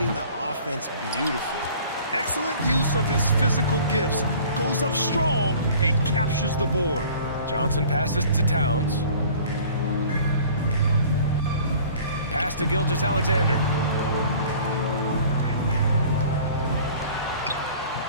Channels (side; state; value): both; inverted; correlation -0.48